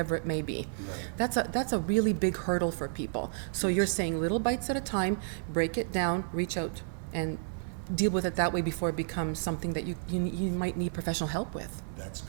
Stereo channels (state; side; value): silent; left; 57 dB below the other